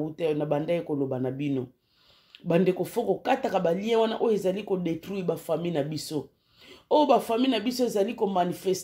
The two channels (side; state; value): both; identical; correlation 1.00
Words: na banda koloba na bino. Bande ko foko kata ka ba lien wana o ezali ko détruire ba famille na biso. O ba famille na biso ezali ko